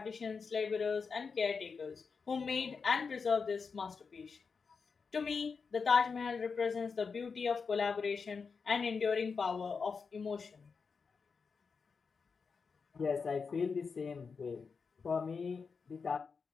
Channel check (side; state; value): right; quieter; 5.3 dB